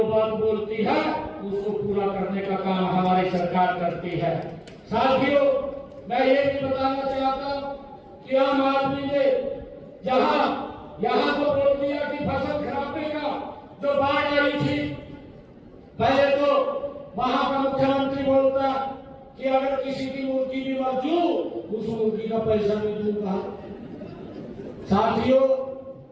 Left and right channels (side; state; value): both; identical; correlation 1.00